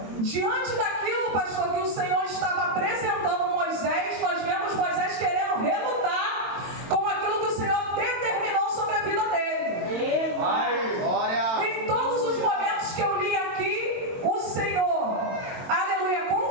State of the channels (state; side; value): late; left; 22 ms